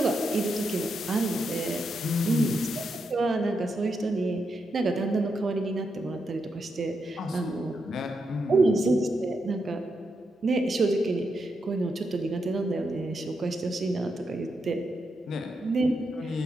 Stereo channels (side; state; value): both; normal; correlation 0.83